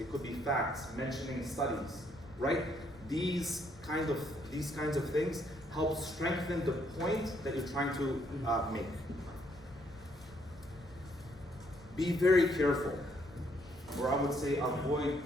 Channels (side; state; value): left; noise; rumble, 21 dB below the sound